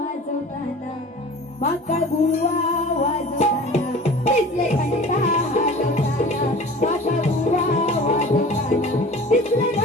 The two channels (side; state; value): both; normal; correlation 0.41